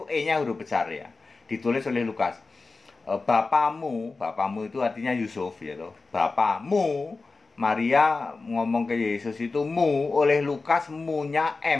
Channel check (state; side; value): quieter; right; 3.9 dB